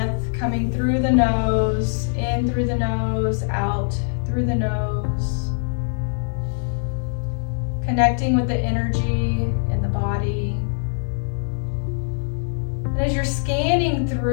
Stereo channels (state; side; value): silent; right; digital silence